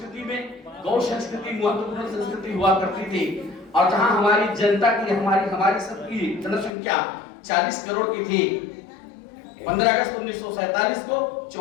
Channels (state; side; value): drops out; right; at 6.7 s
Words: में गौ संस्कृति महत्वपूर्ण संस्कृति हुआ करती थी और जहां हमारी जनता की, हमारी सबकी जनसंख्या 40 करोड़ की थी। 15 अगस्त 1947 को